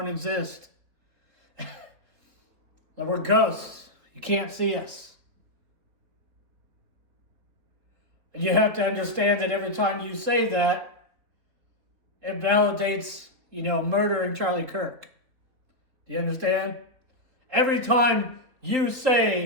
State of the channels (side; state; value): left; late; 4.0 ms